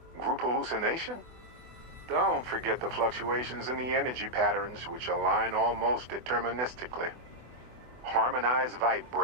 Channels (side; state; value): left; late; 24 ms